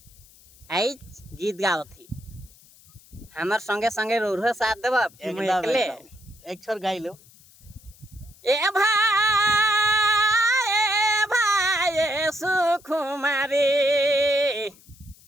आज गीत गाओ थी। हमार संगे संगे रोर साथ देव एकदम एक छोर गाई लो। ए भाई सुकुमारी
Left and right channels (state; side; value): noise; left; hiss, 26 dB below the sound